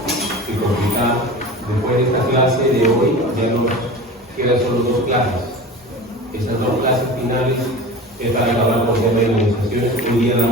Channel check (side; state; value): both; normal; correlation 0.34